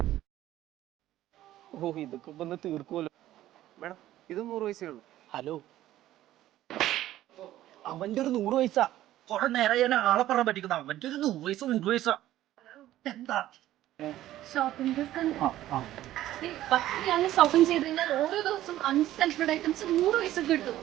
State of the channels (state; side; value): quieter; left; 14.0 dB